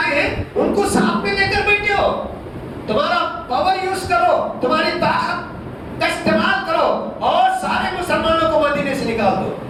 ہیں، ان کو ساتھ میں لے کر بیٹھے ہو۔ تمہارا پاور یوز کرو، تمہاری طاقت کا استعمال کرو اور سارے مسلمانوں کو مدینے سے نکال دو۔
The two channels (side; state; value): both; identical; correlation 1.00